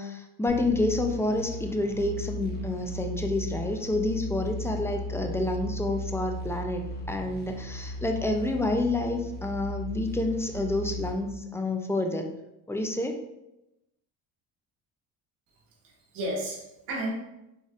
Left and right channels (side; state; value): both; normal; correlation 0.62